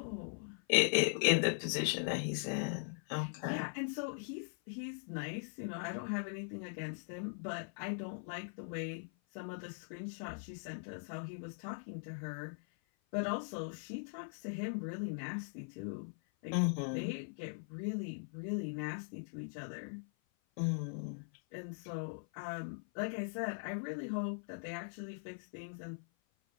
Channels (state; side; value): silent; right; 51 dB below the other